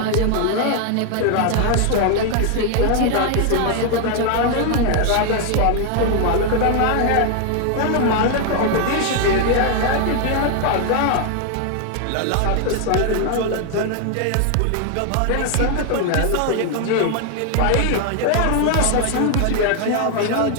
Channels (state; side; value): different; both; correlation 0.00